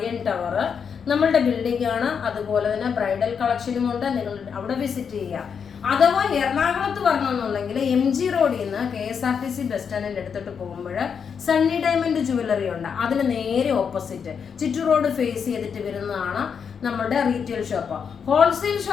ടവർ, നമ്മളുടെ ബിൽഡിംഗ് ആണ്. അതുപോലെ തന്നെ ബ്രൈഡൽ കളക്ഷനും ഉണ്ട്. നിങ്ങൾ അവിടെ വിസിറ്റ് ചെയ്യുക. അഥവാ എറണാകുളത്ത് വരണമെന്നുണ്ടെങ്കിൽ MG റോഡിൽ നിന്ന് KSRTC ബസ് സ്റ്റാൻഡിൻ്റെ അടുത്തോട്ട് പോകുമ്പോൾ സണ്ണി ഡയമണ്ട് ജുവല്ലറി ഉണ്ട്. അതിന് നേരെ ഓപ്പോസിറ്റ് ചുറ്റു റോഡ് ഫേസ് ചെയ്തിട്ട് വരുന്നതാണ് നമ്മുടെ റീറ്റെയിൽ ഷോപ്പ്. ഹോൾസെയിൽ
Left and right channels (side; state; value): right; quieter; 6.7 dB